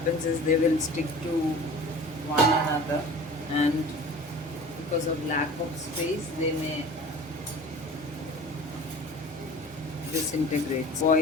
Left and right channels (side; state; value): both; normal; correlation 0.40